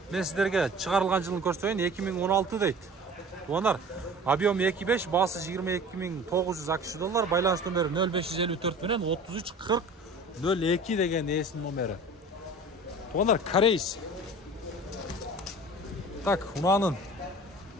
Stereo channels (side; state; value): both; normal; correlation 0.41